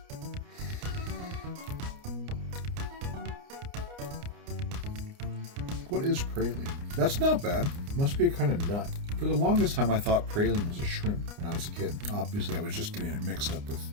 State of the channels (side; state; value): left; late; 29 ms